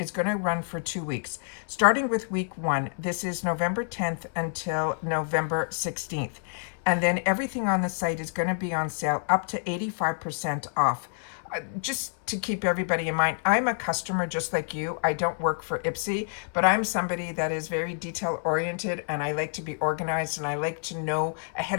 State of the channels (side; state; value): right; silent; 59 dB below the other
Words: going to run for 2 weeks, starting with week 1. This is November 10th until November 16th. And then everything on the site is going to be on sale up to 85% off. Just to keep everybody in mind, I'm a customer just like you. I don't work for IPSY, but I'm somebody that is very detail oriented and I like to be organized and I like to know